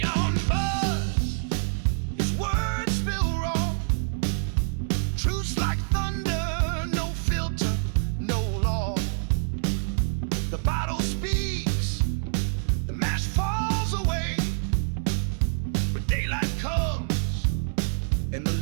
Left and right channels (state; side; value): silent; left; digital silence